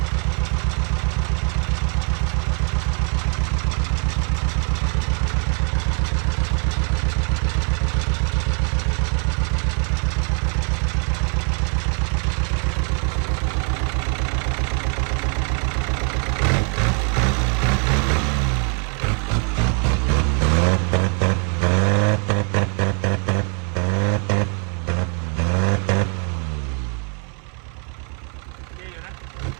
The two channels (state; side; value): quieter; left; 39.6 dB